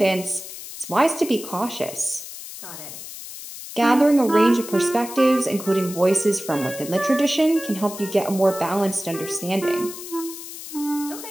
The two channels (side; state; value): left; noise; hiss, 12 dB below the sound